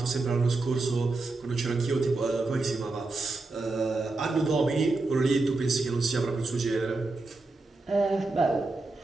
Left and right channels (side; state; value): left; quieter; 3.4 dB